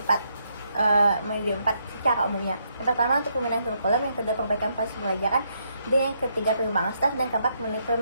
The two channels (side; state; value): both; inverted; correlation -0.76